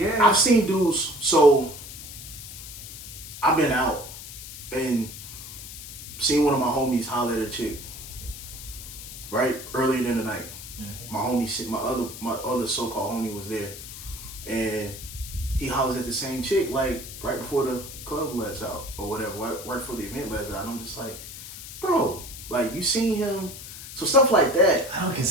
I've seen dudes. So I've been out and seen one of my homies holler at a chick. Right earlier in the night, my homie, my other so-called homie was there, and he hollers at the same chick like right before the club lets out or whatever, right before the event lets out. And I'm just like, bro, like you seen him. So stuff like that. I don't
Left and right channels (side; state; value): left; noise; hiss, 12 dB below the sound